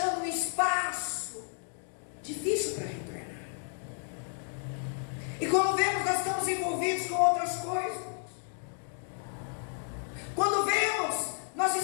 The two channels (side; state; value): right; silent; 56 dB below the other